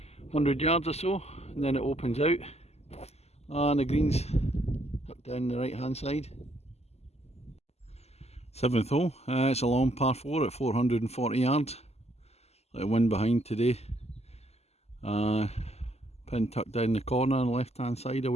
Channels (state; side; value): late; right; 0.30 ms